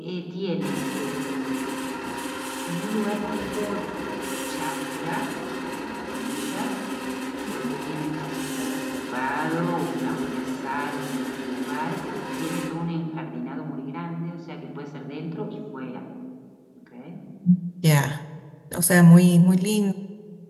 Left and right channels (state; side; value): identical; both; correlation 1.00